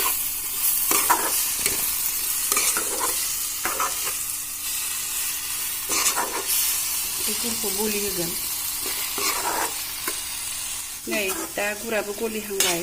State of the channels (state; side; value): identical; both; correlation 1.00